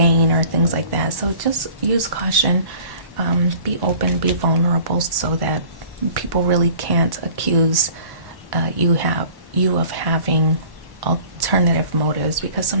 or things like that. So just use caution, be open, be vulnerable, so that people really can't accuse you of having alternative motives, because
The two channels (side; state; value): left; late; 1.1 ms